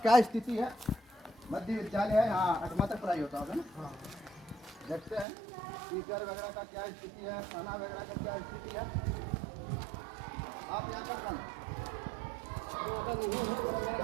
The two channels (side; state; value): left; drops out; at 5.2 s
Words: क्या स्थिति है। मध्य विद्यालय है, यहाँ 8वां तक पढ़ाई होता होगा ना। देखते हैं टीचर वगैरह का क्या स्थिति है, खाना वगैरह का क्या स्थिति है। आप यहाँ कर